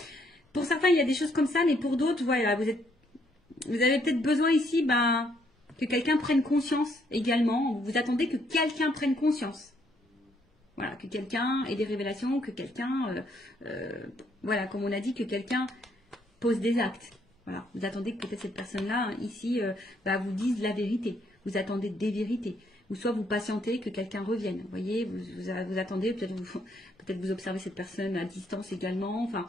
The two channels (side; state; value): both; normal; correlation 0.70